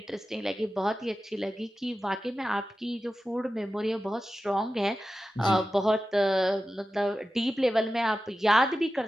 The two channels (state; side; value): normal; both; correlation 0.93